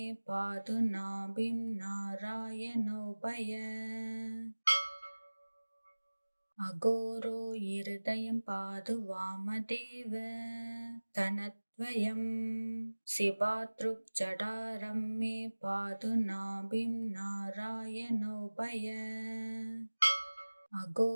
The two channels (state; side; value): inverted; both; correlation -1.00